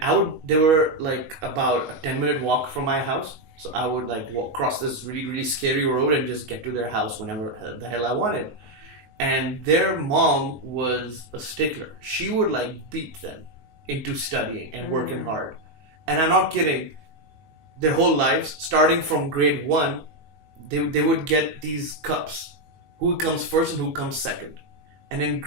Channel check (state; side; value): late; left; 19 ms